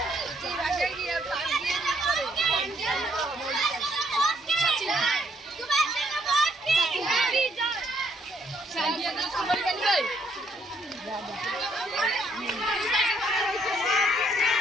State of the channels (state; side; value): normal; both; correlation 0.70